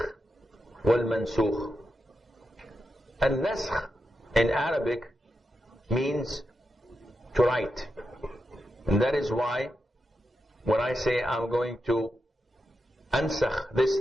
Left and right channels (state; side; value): normal; both; correlation 0.87